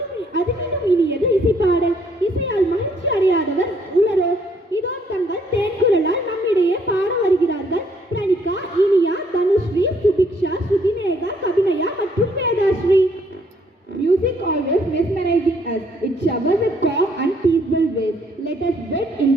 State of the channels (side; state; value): both; normal; correlation 0.66